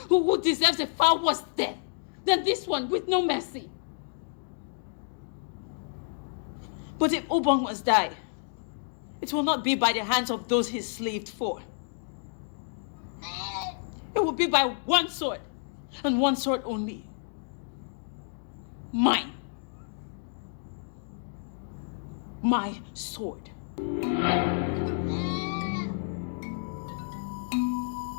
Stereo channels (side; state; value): right; silent; digital silence